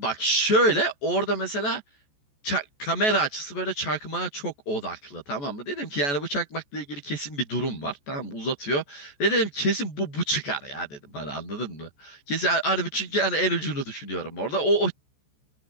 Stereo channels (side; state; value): right; late; 14 ms